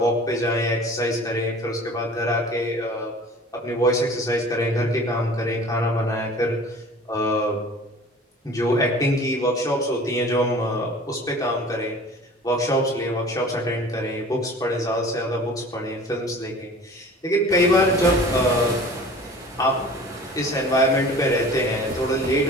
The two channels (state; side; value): normal; both; correlation 0.44